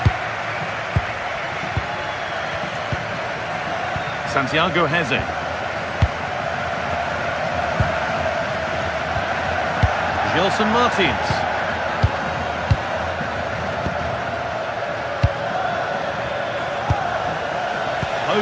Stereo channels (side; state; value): both; identical; correlation 1.00